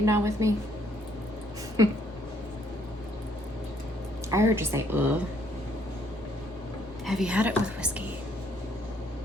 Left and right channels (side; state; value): both; normal; correlation 0.67